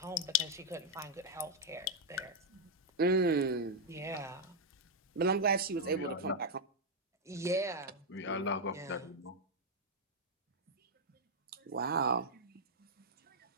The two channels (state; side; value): normal; both; correlation -0.02